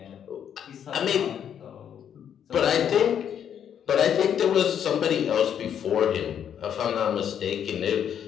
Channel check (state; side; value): quieter; right; 9.0 dB